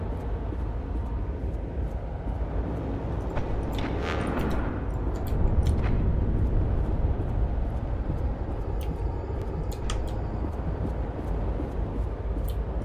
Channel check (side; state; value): both; identical; correlation 1.00